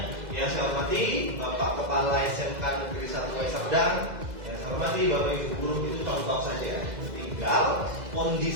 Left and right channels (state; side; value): late; left; 2.0 ms